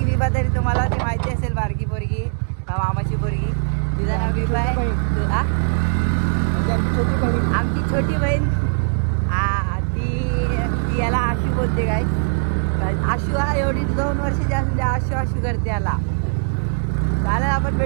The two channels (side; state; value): left; silent; digital silence